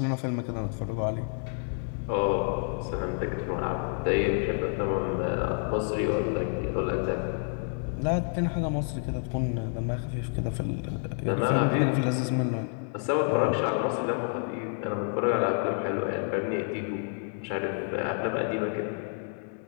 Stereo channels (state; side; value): silent; right; 58 dB below the other